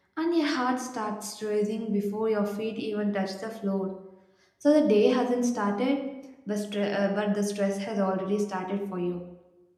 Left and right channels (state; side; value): identical; both; correlation 1.00